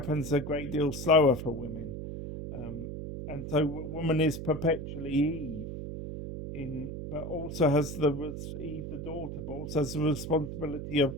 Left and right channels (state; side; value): noise; right; hum, 7 dB below the sound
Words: a great deal slower for women. Um, and so, woman is perpetually Eve, but also has Eve the daughter, but also has the responsibility of